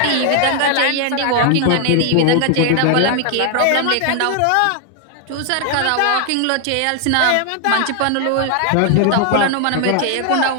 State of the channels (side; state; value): both; different; correlation 0.00